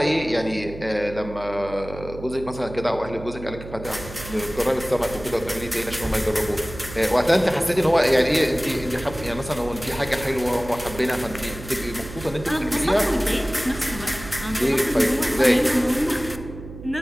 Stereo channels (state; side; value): noise; right; hum, 13 dB below the sound